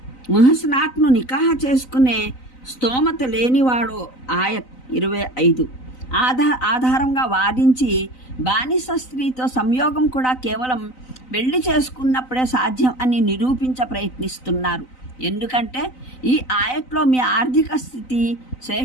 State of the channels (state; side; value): late; right; 3.9 ms